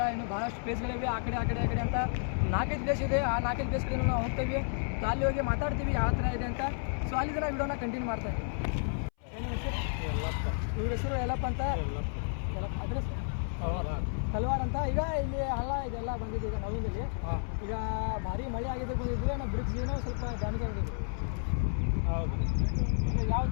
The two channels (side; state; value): right; silent; 57 dB below the other